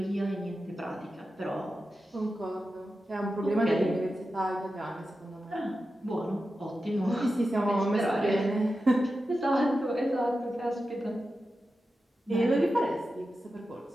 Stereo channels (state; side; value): normal; both; correlation 0.91